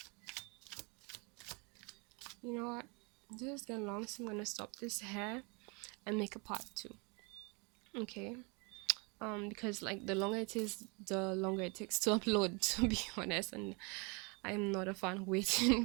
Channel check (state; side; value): quieter; left; 31.5 dB